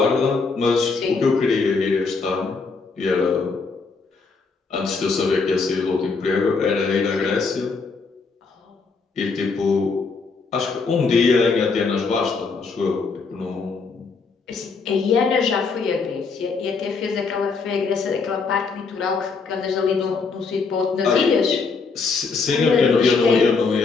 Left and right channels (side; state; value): right; quieter; 4.6 dB